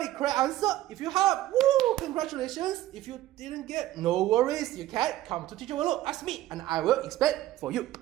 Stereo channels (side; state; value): left; quieter; 14.7 dB